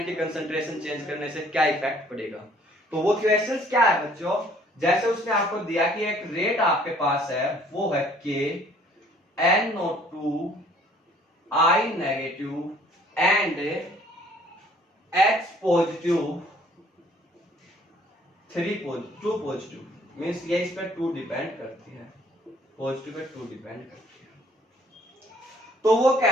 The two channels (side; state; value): both; normal; correlation 0.58